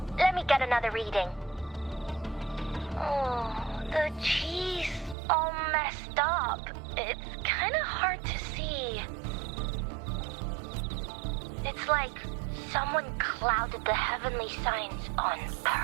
let me get another reading. Oh, the cheese all messed up. It's kind of hard to see. It's like someone clouded the heavenly signs on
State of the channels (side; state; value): left; drops out; at 5.2 s